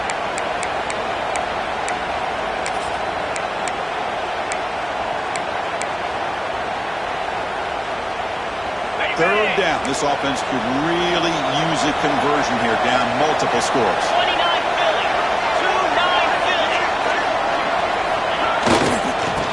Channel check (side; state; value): both; identical; correlation 1.00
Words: Third down. This offense could really use a conversion here, down multiple scores.